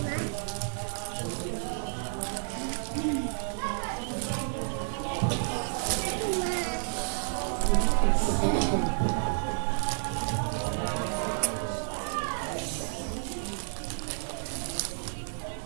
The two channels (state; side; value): silent; left; digital silence